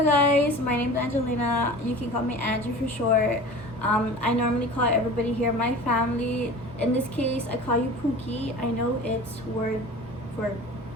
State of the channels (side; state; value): both; normal; correlation 0.38